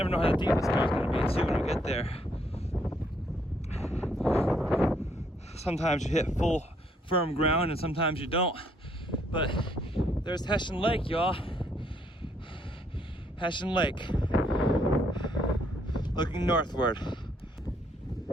know how deep the snow is going to be too when we get there. Sometimes you hit full firm ground and sometimes you don't. But there's Hessian Lake, y'all. Hessian Lake. Looking northward.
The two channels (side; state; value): both; normal; correlation 0.70